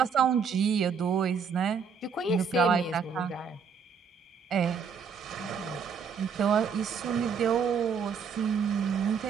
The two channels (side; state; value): left; quieter; 6.2 dB